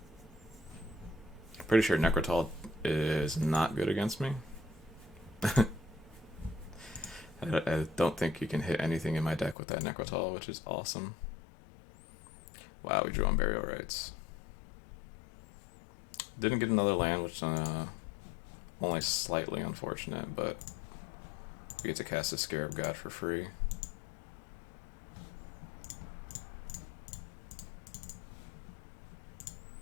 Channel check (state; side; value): drops out; right; at 9.6 s